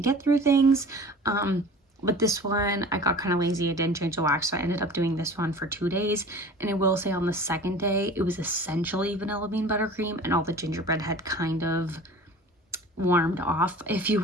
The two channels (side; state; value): both; normal; correlation 0.41